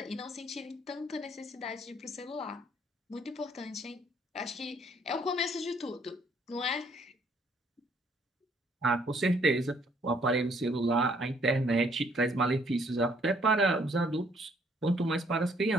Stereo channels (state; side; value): normal; both; correlation 0.65